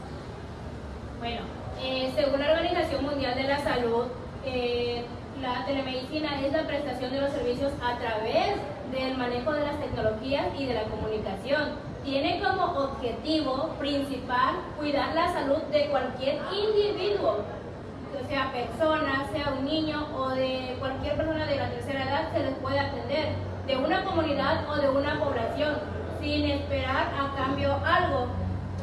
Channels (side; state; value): both; identical; correlation 1.00